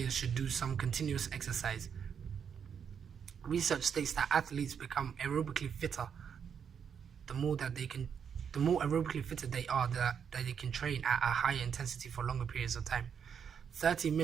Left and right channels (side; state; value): left; quieter; 7.4 dB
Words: should do some continuous exercise. Research states that athletes become aerobically fitter the more aerobically fitter they are, that they can train at a higher intensity for longer periods of time. 30